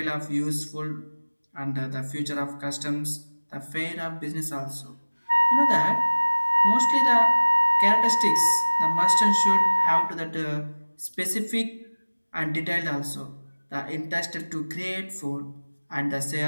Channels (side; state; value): both; inverted; correlation -1.00